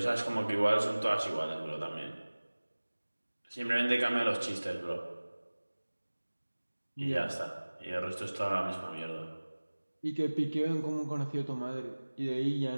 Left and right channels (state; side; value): inverted; both; correlation -1.00